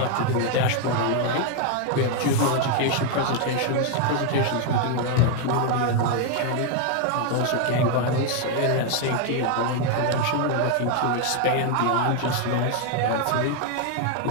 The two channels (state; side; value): different; both; correlation 0.01